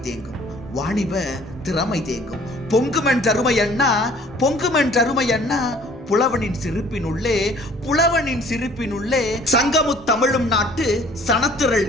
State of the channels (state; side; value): normal; both; correlation 0.54